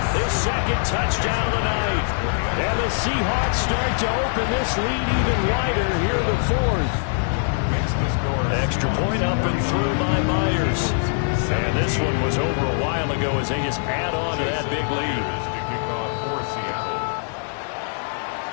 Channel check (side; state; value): right; silent; digital silence